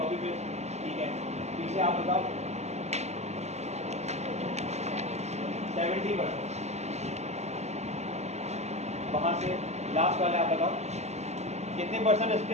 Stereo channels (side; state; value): left; late; 0.32 ms